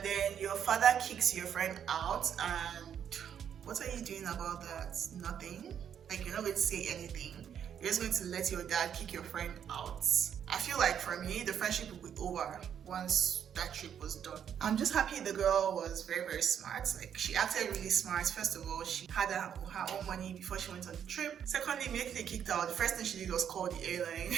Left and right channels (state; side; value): quieter; left; 8.7 dB